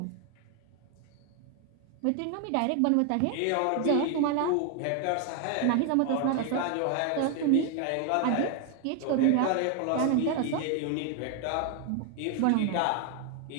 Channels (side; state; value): both; different; correlation 0.01